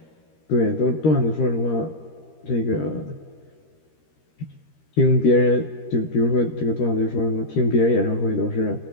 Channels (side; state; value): right; late; 13 ms